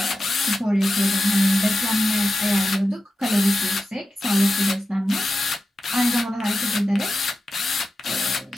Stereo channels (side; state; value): both; normal; correlation 0.91